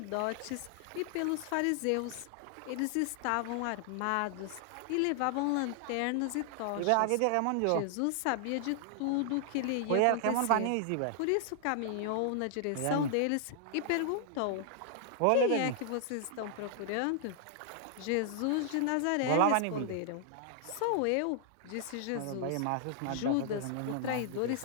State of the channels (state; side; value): different; both; correlation 0.00